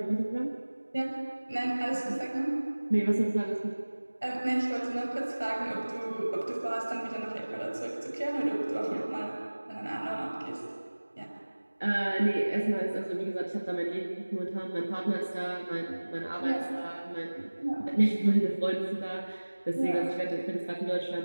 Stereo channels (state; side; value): inverted; both; correlation -1.00